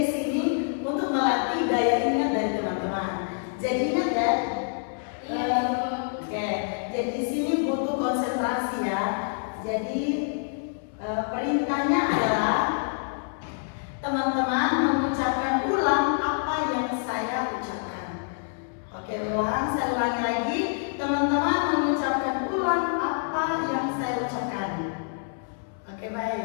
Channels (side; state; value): right; silent; 60 dB below the other